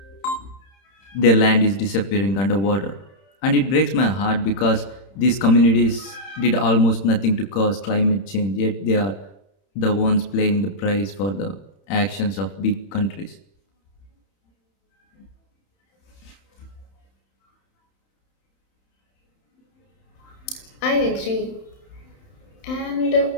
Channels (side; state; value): right; late; 31 ms